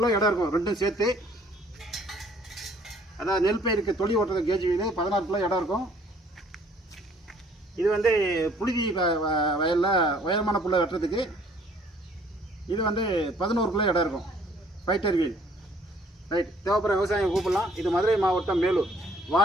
இடம் இருக்கும் ரெண்டும் சேர்த்து. அதாவது நெல் பயிருக்கு தொழி ஓட்டுறது கேஜ் வீல் 16 கிலோ இடம் இருக்கும். இது வந்து புழுதி வயலில் உயரமான புல்லை வெட்டுறதுக்கு. இது வந்து 11 கிலோ இடம் இருக்கும் ஃபைட்டர் வீல். ரைட், தேவைப்படுற விவசாயம் கூப்பிடலாம். இது மதுரை மாவட்டம் மேலூர்.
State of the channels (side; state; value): both; normal; correlation 0.59